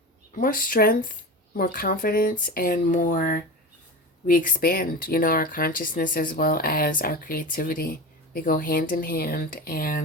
strength, more confidence, and more we expand, our consciousness as well as our creativity. They go hand in hand.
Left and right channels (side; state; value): both; normal; correlation 0.27